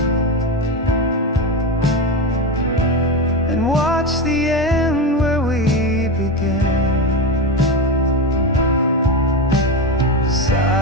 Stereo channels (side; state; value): both; normal; correlation 0.17